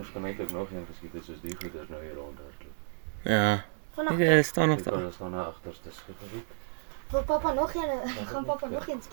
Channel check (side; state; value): left; silent; digital silence